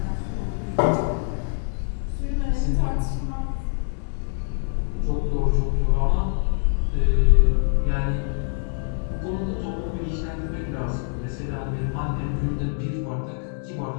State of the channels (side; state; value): right; silent; 60 dB below the other